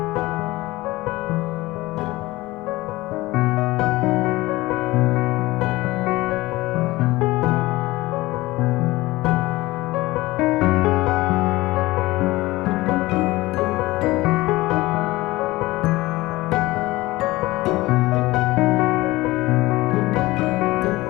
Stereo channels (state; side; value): quieter; right; 19.4 dB